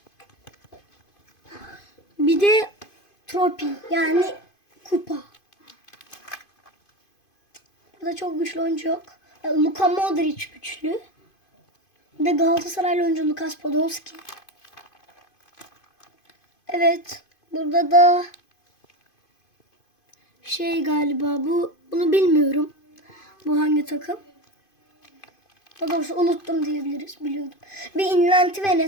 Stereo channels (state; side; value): late; right; 2.5 ms